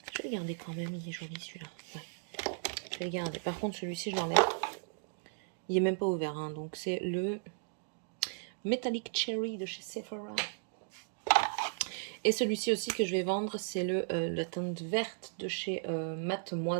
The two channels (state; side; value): silent; left; digital silence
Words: le garder quand même. Il est joli, celui-là. Ouais. Je vais le garder. Par contre, celui-ci, je l'enlève. Il est même pas ouvert. Hein. Donc, c'est le Metallic Cherry de chez Sephora. Et celui-ci aussi que je vais vendre, c'est la teinte verte de chez